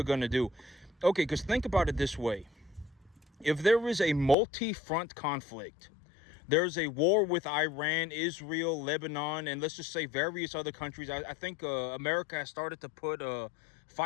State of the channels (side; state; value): right; drops out; at 4.4 s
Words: gonna do? Okay, because think about it this way: if there is a multi-front conflict. There's a war with Iran, Israel, Lebanon, and let's just say various other countries. I think America has started to put